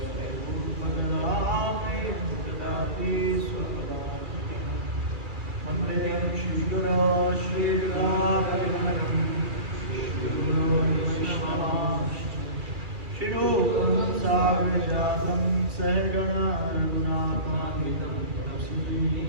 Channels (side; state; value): left; late; 2.4 ms